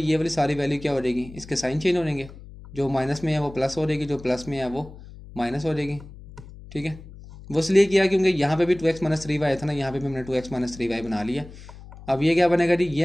ये वाली सारी वैल्यू क्या हो जाएगी, इसके साइन चेंज हो जाएंगे, जो माइनस में है वो प्लस हो जाएगी, जो प्लस में है वो माइनस हो जाएगी, ठीक है। वो इसलिए किया क्योंकि यहाँ पे भी 2x - 3y था ना, यहाँ पे भी हमने 2x - 3y बना लिया। अब ये क्या बनेगा जी,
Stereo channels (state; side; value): noise; left; hum, 17 dB below the sound